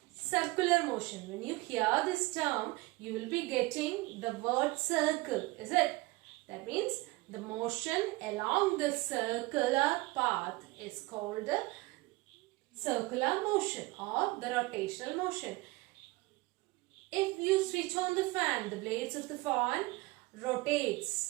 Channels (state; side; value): quieter; left; 22.1 dB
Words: circular motion. When you hear this term, you will be getting the word circle, is it? That means the motion along the circular path is called the circular motion or the rotational motion. If you switch on the fan, the blades of the fan